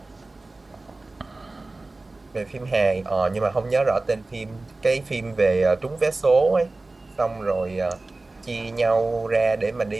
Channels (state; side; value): quieter; left; 3.2 dB